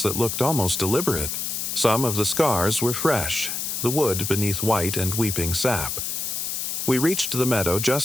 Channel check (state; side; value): noise; left; hiss, 3 dB below the sound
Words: that looked almost deliberate. Some of the scars were fresh, the wood beneath white and weeping sap. We reached the meadow